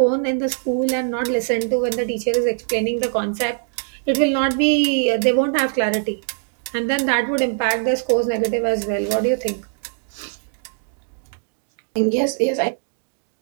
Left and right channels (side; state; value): left; silent; digital silence